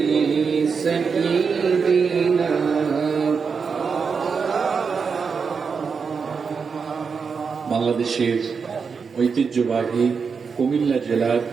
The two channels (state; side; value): quieter; left; 5.6 dB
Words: सय्यिदिना। বাংলাদেশের ঐতিহ্যবাহী কুমিল্লা জেলার